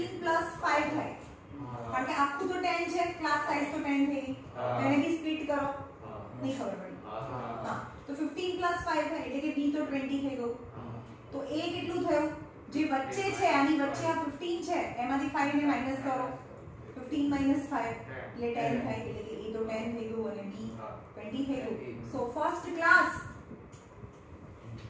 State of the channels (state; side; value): identical; both; correlation 1.00